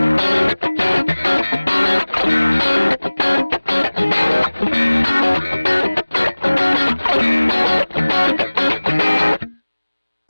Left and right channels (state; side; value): inverted; both; correlation -1.00